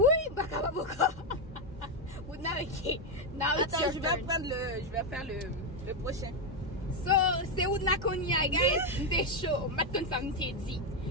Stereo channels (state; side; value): normal; both; correlation 0.05